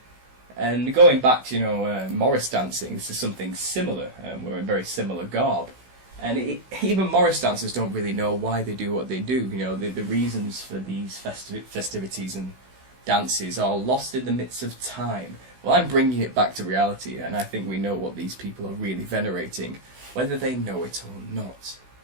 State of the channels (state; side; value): late; left; 16 ms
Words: And going back to Morris dancing, this is something similar. We're in very similar garb, and even Morris dancers don't really know why they do what they do. The reasons for these festivities and dances are lost in the midst of time. Well, I'm bringing it back to reality, and I think we know what these people are really venerating, whether they know it or not.